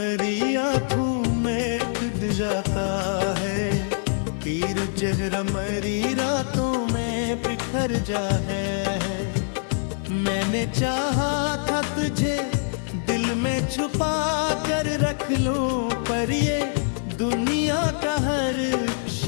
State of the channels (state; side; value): silent; right; digital silence